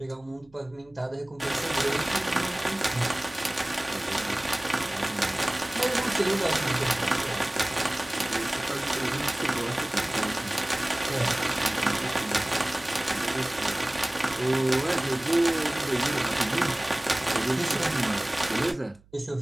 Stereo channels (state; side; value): noise; right; hum, 29 dB below the sound